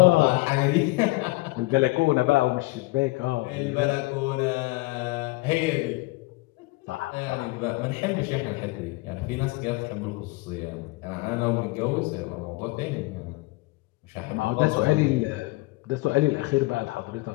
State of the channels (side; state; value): right; quieter; 22.7 dB